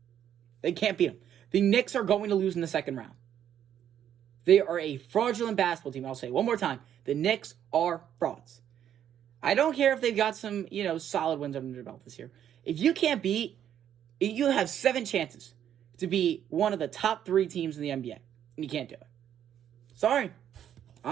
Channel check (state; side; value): quieter; left; 10.0 dB